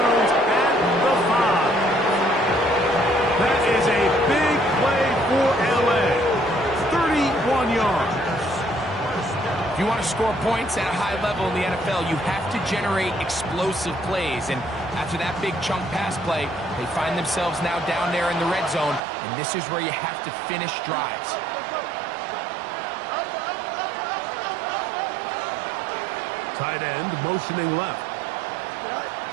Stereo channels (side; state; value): left; drops out; at 19.0 s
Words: at the 5. That is a big play for L.A. 31 yards. If you want to score points at a high level in the NFL, you have to generate explosive plays. And after that big chunk pass play, they find themselves now down there in the red zone, and this is where you have to finish drives. Tight end motioning left.